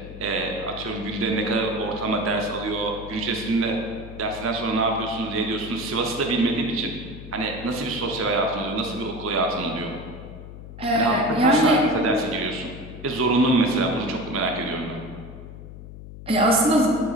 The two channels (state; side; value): noise; left; hum, 13 dB below the sound